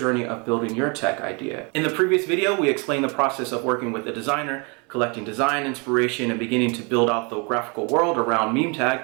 of building your tech idea. In the previous video, we explained the process of working with a designer, collecting design inspiration, and beginning to build out the graphical world around Meme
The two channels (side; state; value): left; quieter; 31.9 dB